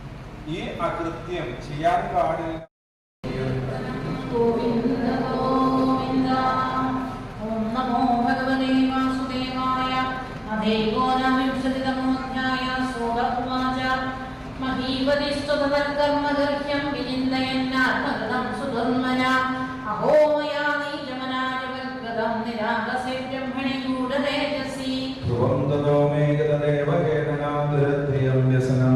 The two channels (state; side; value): identical; both; correlation 1.00